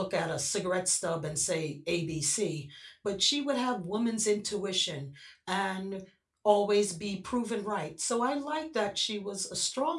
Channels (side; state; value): both; identical; correlation 1.00